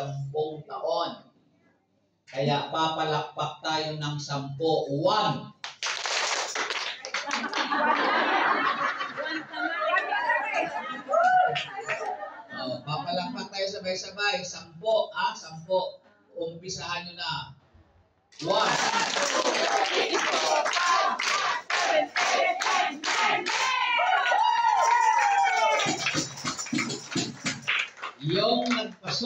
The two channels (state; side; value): identical; both; correlation 1.00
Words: taon. Kaya papalakpak tayo ng 10. 1. Papalakpak tayo sabay-sabay. 10, 10. Umpisahan nyo na. 1. Yung